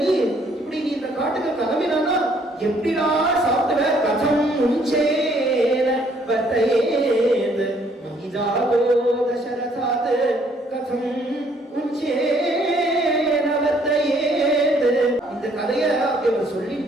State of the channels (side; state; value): both; normal; correlation 0.65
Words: இப்படி நீ இந்த காட்டுக்கு கிளம்பினானா எப்படிடா சாப்பிடுவ? கதம் உஞ்சேன வர்த்தயேத் மகிஜாதோ தசரதாத் கதம் உஞ்சேன வர்த்தயேத். இந்த கதையை அவர்